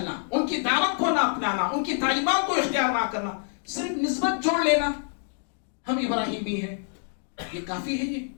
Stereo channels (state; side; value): silent; right; 60 dB below the other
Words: ان کی دعوت کو نہ اپنانا، ان کی تعلیمات کو اختیار نہ کرنا، صرف نسبت جوڑ لینا ہم ابراہیمی ہیں، یہ کافی ہے؟ یہ